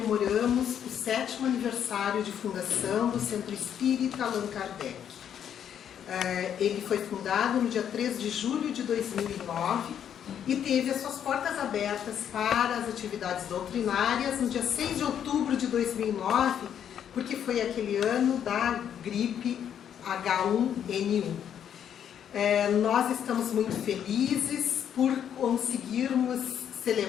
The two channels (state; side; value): quieter; right; 9.1 dB